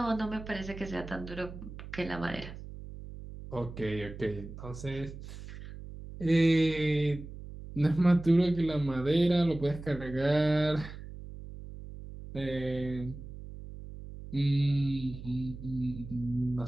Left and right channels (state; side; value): noise; right; hum, 12 dB below the sound